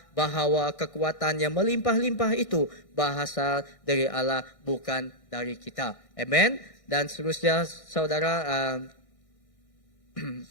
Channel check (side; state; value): right; late; 1.6 ms